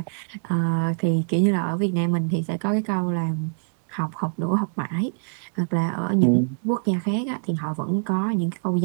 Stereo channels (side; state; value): left; silent; 62 dB below the other